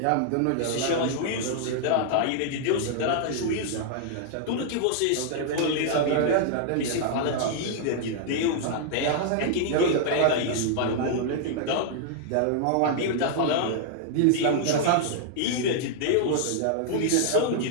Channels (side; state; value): both; different; correlation -0.01